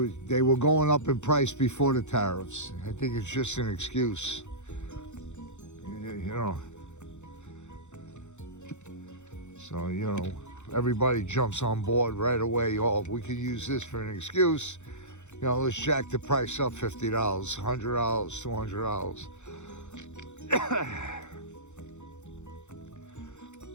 were going up in price before the tariffs. I think it's just an excuse. You know. So, you know, everybody jumps on board right away. Oh, we could use this for an excuse. You know, let's jack the price up $50, $100, $200.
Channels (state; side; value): late; right; 0.83 ms